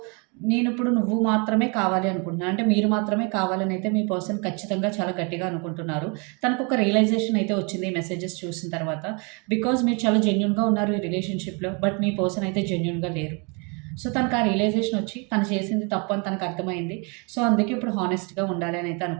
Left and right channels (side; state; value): left; quieter; 33.1 dB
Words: నేను ఇప్పుడు నువ్వు మాత్రమే కావాలి అనుకుంటున్నాను, అంటే మీరు మాత్రమే కావాలని అయితే మీ పర్సన్ ఖచ్చితంగా చాలా గట్టిగా అనుకుంటున్నారు. తనకు ఒక రియలైజేషన్ అయితే వచ్చింది ఈ మెసేజెస్ చూసిన తర్వాత. బికాజ్ మీరు చాలా జెన్యున్గా ఉన్నారు ఈ రిలేషన్షిప్లో, బట్ మీ పర్సన్ అయితే జెన్యున్గా లేరు. సో తనకు ఆ రియలైజేషన్ వచ్చి తను చేసింది తప్పు అని తనకు అర్థమైంది. సో అందుకే ఇప్పుడు హానెస్ట్గా ఉండాలి అని అయితే